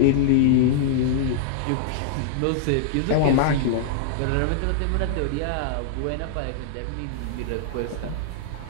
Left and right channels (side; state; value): both; different; correlation -0.01